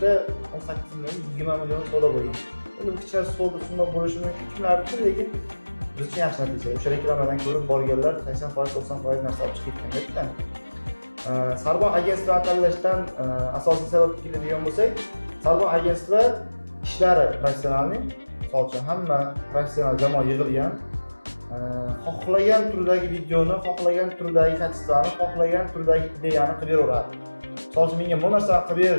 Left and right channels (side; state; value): both; inverted; correlation -1.00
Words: 18 million, 20 million savdo bo'lgan. endi bu kichkina summa bo'lishi mumkin, kimlar uchun, lekin biz uchun yaxshi natija. O'sha reklamadan ko'rib borganlar 80%, 90% narsa olib chiqib ketganda. Sarbon agentvini tanlashdan asosiy sabab keladigan bo'lsak, Sarbon agentstvi ishlari professionalni, misol uchun hamma professional jamoa yig'ilgan, xohlagan turdagi videoni, xohlagan turdagi kачествоni, xohlagan turdagi ideyani qilib beraveradi. Misol uchun menga bu narsani qilib ber